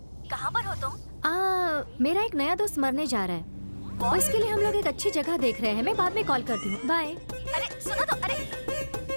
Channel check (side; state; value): both; inverted; correlation -1.00